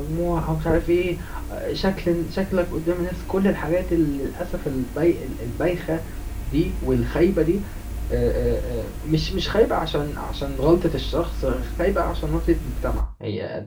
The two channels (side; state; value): both; identical; correlation 1.00